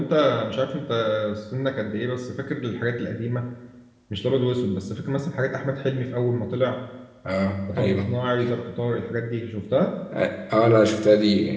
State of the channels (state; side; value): identical; both; correlation 1.00